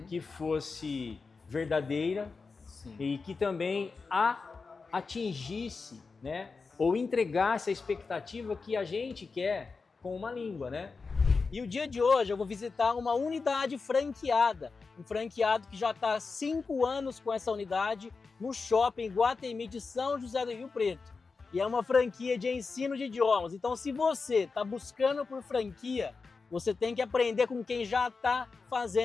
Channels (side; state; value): right; quieter; 4.5 dB